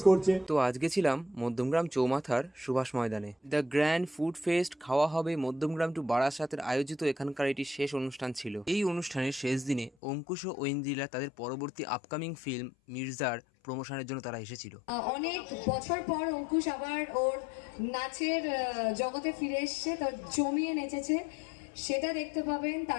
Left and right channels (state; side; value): drops out; right; at 9.9 s